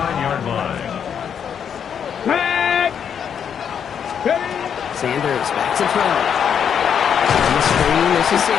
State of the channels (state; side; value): quieter; right; 7.9 dB